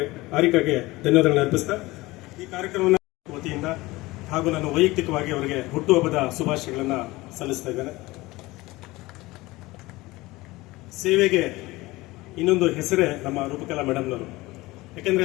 ಹಾರಿಕಾಗೆ ಧನ್ಯವಾದಗಳನ್ನು ಅರ್ಪಿಸ್ತಾ ಈ ಕಾರ್ಯಕ್ರಮವನ್ನು ವತಿಯಿಂದ ಹಾಗೂ ನಾನು ವೈಯಕ್ತಿಕವಾಗಿ ಅವರಿಗೆ ಹುಟ್ಟುಹಬ್ಬದ ಶುಭಾಶಯಗಳನ್ನು ಸಲ್ಲಿಸ್ತಾ ಇದ್ದೇನೆ. ಸೇವೆಗೆ ಇನ್ನೊಂದು ಹೆಸರೇ ನಮ್ಮ ರೂಪಕಲಾ ಮೇಡಮ್ನವರು.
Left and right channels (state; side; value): quieter; right; 20.3 dB